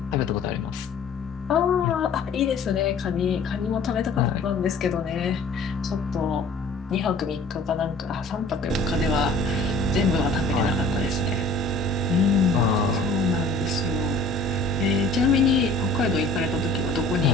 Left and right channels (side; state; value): right; quieter; 3.0 dB